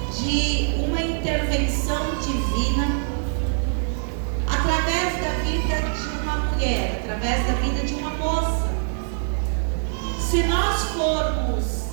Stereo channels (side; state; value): left; silent; digital silence